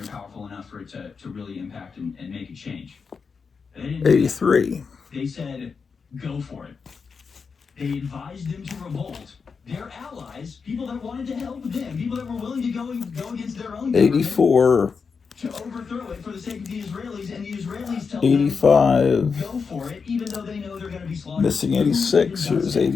powerful enough for it to really impact and make a change. 83. They said, go for it. They advised them to revolt. Their allies, people that wanted to help them, people that were willing to go against their own 84. To overthrow it for the sake of the Israelis, and the Israelis tell 85. them, go for it, even though they know they're going to be slaughtered. Missing 86. Here's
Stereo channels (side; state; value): right; quieter; 5.4 dB